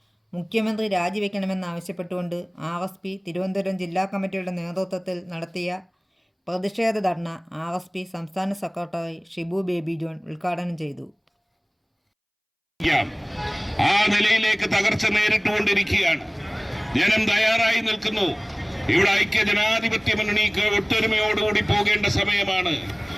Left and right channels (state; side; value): identical; both; correlation 1.00